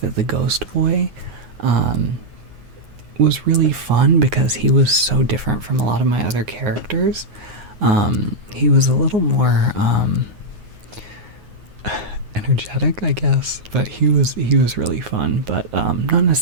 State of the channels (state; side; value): late; left; 9.6 ms